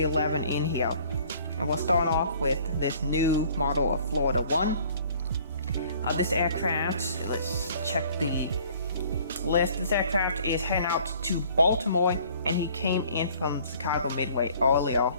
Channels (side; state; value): both; inverted; correlation -0.55